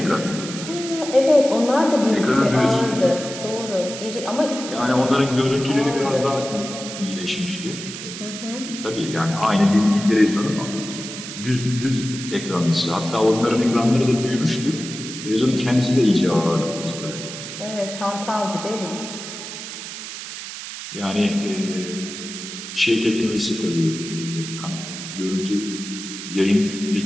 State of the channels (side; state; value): right; noise; hiss, 9 dB below the sound